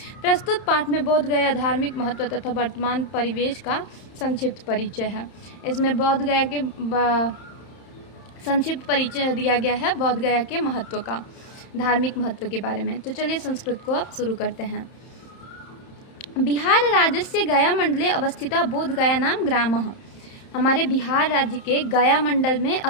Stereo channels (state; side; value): late; right; 31 ms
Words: प्रस्तुत पाठ में बोध गया धार्मिक महत्व तथा वर्तमान परिवेश का संक्षिप्त परिचय है। इसमें बोध गया के संक्षिप्त परिचय दिया गया है बोध गया के महत्व का, धार्मिक महत्व के बारे में। तो चलिए संस्कृत को अब शुरू करते हैं। बिहार राज्यस्य गया मंडले अवस्थिता बोध गया नाम ग्रामः। हमारे बिहार राज्य के गया मंडल में